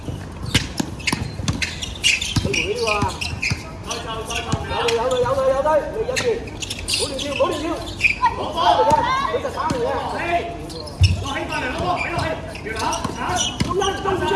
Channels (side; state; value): both; identical; correlation 1.00